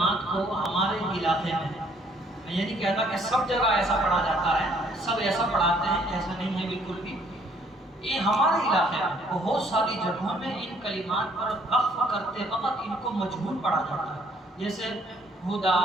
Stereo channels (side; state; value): both; normal; correlation 0.63